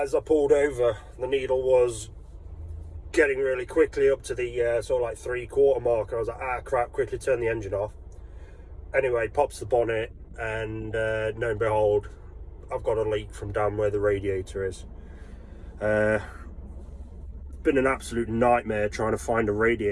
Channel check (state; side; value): identical; both; correlation 1.00